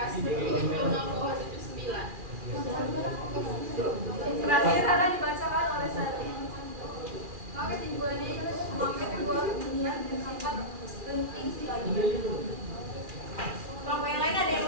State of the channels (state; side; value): late; left; 2.4 ms